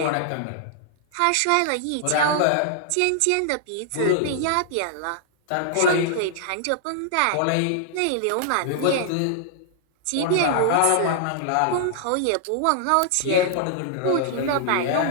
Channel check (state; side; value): different; both; correlation -0.01